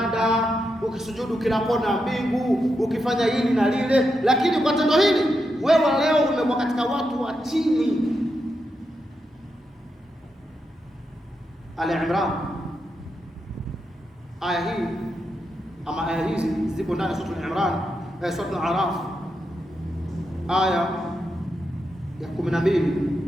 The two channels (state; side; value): normal; both; correlation 0.85